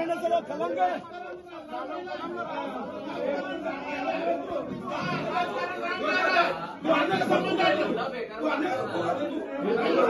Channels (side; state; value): both; identical; correlation 1.00